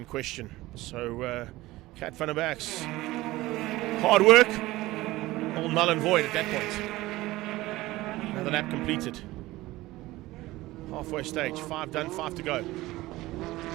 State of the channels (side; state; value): left; quieter; 18.3 dB